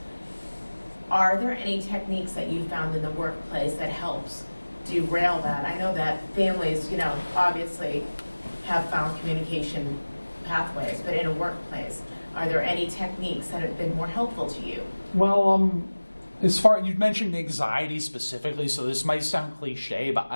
Are there any techniques that you found in the workplace that helps derail that? I know that families, obviously have found communication pathways, but in a workplace, are there any techniques that have been more helpful to you? Well, as far you mentioned anxiety specifically, so this might sound cliche, but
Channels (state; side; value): inverted; both; correlation -1.00